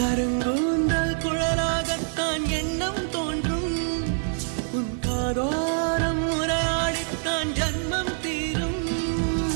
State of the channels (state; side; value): silent; left; digital silence